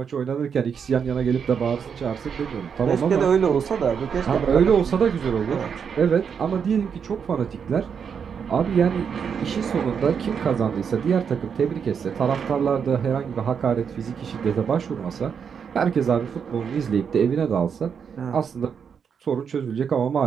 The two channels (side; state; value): left; quieter; 6.9 dB